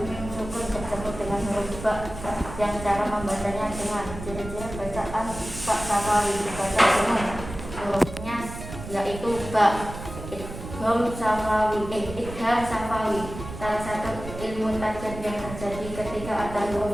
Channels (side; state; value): right; noise; rumble, 10 dB below the sound